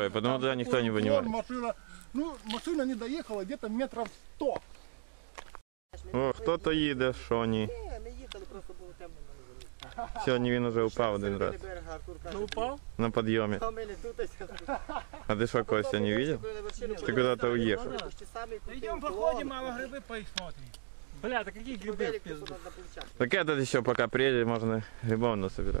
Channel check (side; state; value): left; silent; digital silence